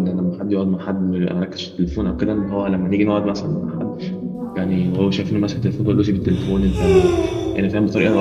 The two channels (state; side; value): identical; both; correlation 1.00